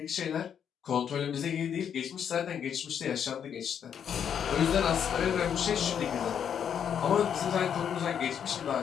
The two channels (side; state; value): right; quieter; 8.3 dB